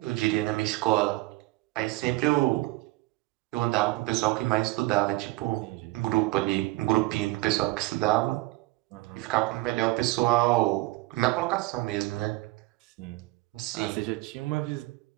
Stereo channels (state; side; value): quieter; left; 20.2 dB